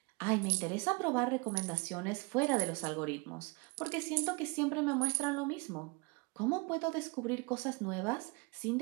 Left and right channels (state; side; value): quieter; left; 28.6 dB